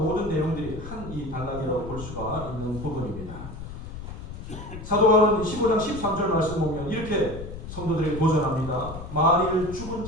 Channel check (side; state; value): left; noise; rumble, 10 dB below the sound